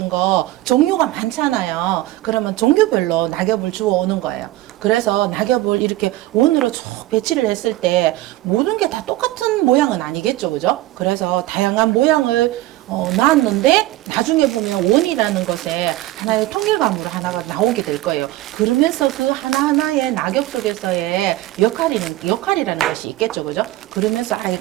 거 종류가 많잖아요. 그러면 종류별로 낙엽을 주워 오는 거예요. 그래서 낙엽을 이렇게 원으로 쭉 배치를 했을 때 모든 게 다 똑같은 모양은 아니겠죠, 그죠? 그래서 다양한 모양을 놨는데 나중에 보면 원이라는 것에 하나의 통일감으로 하나가 나오게 될 거예요. 그러면서 그 하나하나의 낙엽 속에서의 역할이라는 것이 있겠죠, 그죠? 그러면서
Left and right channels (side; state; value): left; quieter; 16.5 dB